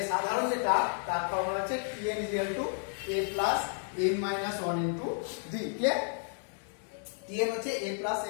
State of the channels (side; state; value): right; silent; 56 dB below the other